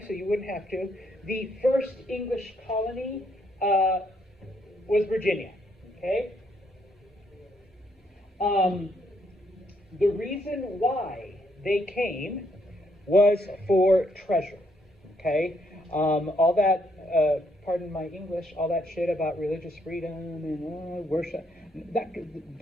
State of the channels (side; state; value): both; normal; correlation 0.73